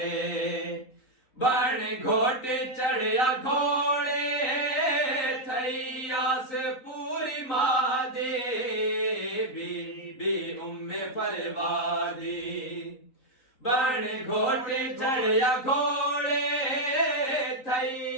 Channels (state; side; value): late; right; 3.9 ms